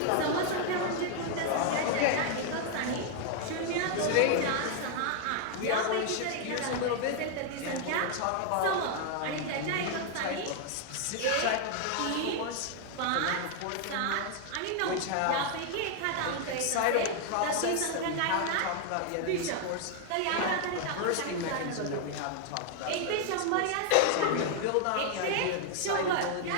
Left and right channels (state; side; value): different; both; correlation 0.00